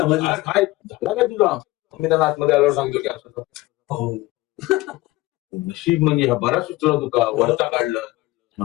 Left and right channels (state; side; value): quieter; right; 19.4 dB